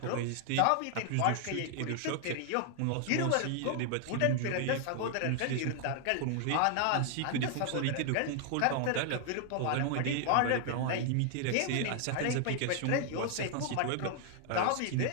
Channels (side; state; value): both; different; correlation 0.00